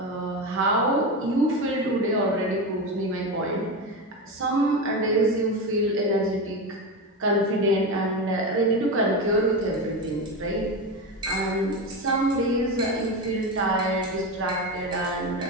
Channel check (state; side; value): normal; both; correlation 0.19